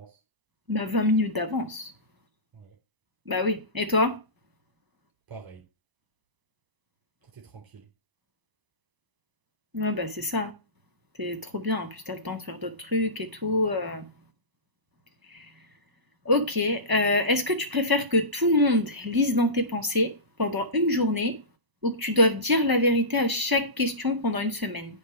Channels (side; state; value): left; late; 1.0 ms